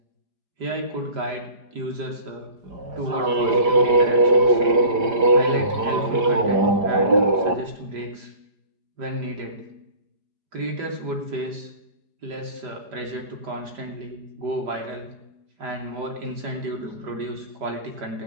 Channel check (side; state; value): left; late; 5.0 ms